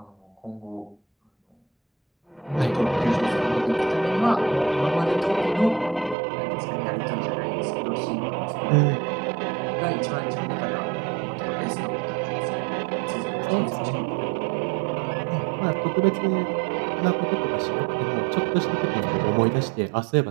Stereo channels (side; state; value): left; drops out; at 6.2 s